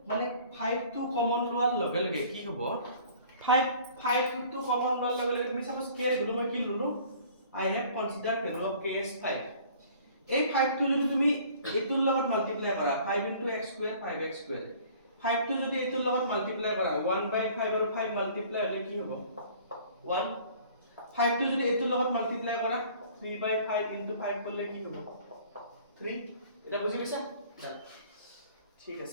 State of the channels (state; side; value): inverted; both; correlation -0.51